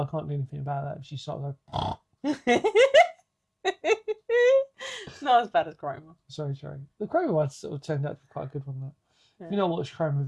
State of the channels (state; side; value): identical; both; correlation 1.00